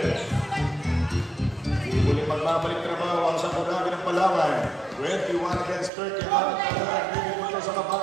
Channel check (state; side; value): drops out; left; at 5.9 s